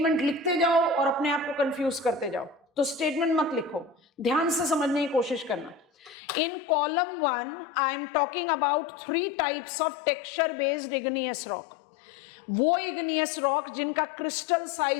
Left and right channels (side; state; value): right; drops out; at 6.2 s